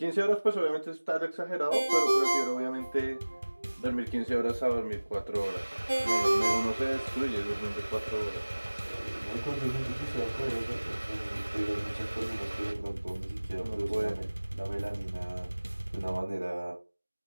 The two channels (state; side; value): inverted; both; correlation -1.00